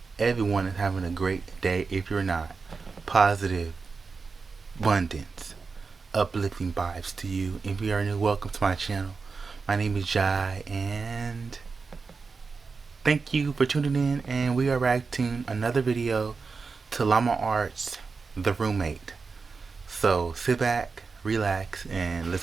everyone is having a great day. If you're not, positive, abundance, uplifting vibes to you. If you are new, welcome to my channel. My name is Jai, and thank you for tuning in. And we are reacting another video to Llama Art's The Roommate. So sit back, relax, and let's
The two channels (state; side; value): quieter; left; 4.7 dB